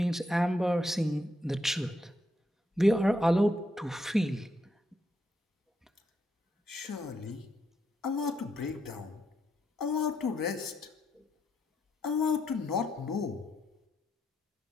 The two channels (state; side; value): normal; both; correlation 0.79